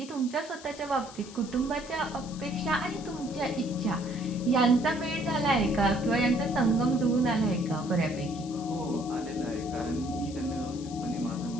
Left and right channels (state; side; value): noise; left; hiss, 17 dB below the sound